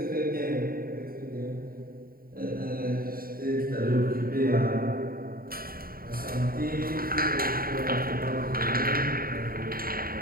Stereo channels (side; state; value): left; late; 0.43 ms